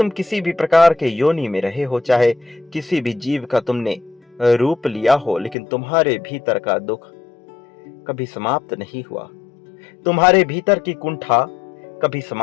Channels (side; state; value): right; drops out; at 5.6 s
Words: किसी भी प्रकार के योनि में रहे हो, चाहे किसी भी जीव का तुमने रूप लिया हो, लेकिन तुम्हारे भीतर का दुख कभी समाप्त नहीं हुआ। तुम्हारे भीतर की कुंठा कभी